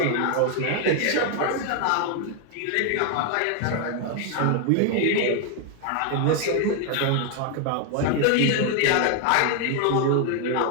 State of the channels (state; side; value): different; both; correlation 0.01